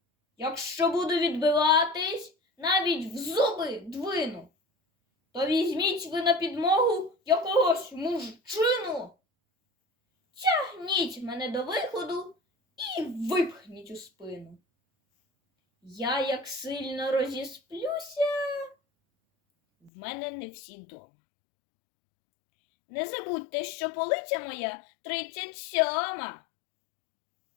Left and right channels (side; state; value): right; drops out; at 19.9 s